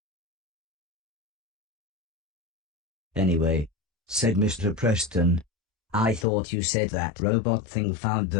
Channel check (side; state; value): right; drops out; at 6.2 s